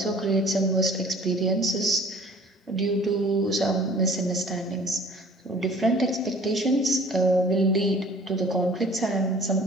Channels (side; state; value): both; normal; correlation 0.50